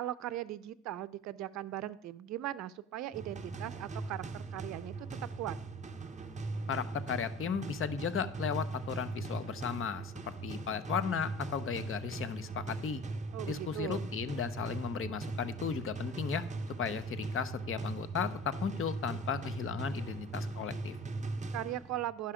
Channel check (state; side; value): normal; both; correlation 0.41